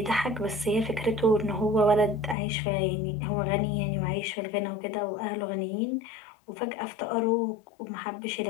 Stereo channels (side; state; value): right; drops out; at 2.4 s